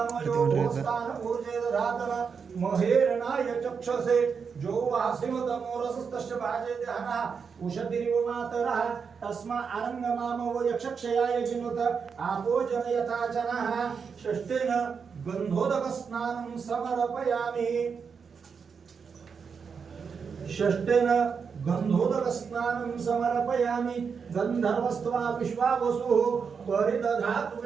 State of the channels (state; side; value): quieter; left; 6.0 dB